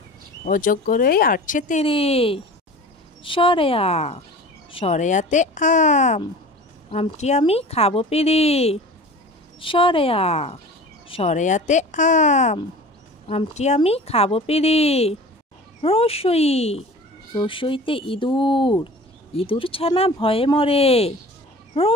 অজগরেই আসছে তেরে স্বরে আ স্বরে আতে আম আমটি আমি খাবো পেরে স্বরে আ স্বরে আতে আম আমটি আমি খাবো পেরে রসই রসইতে ইঁদুর ইঁদুর ছানা ভয়ে মরে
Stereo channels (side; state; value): both; normal; correlation 0.39